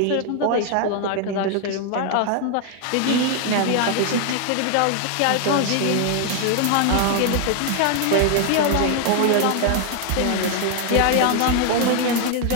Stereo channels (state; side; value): different; both; correlation 0.00